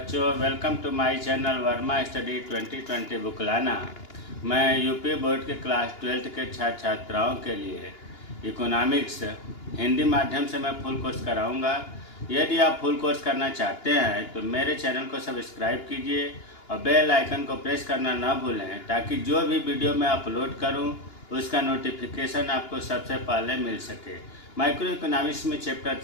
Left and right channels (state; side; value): late; right; 2.9 ms